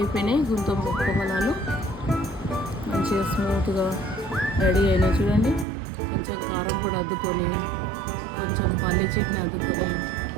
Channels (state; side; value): drops out; left; at 5.7 s